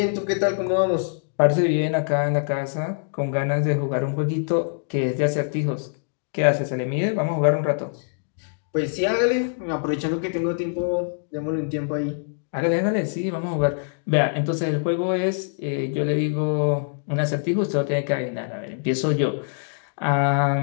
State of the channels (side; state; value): right; silent; digital silence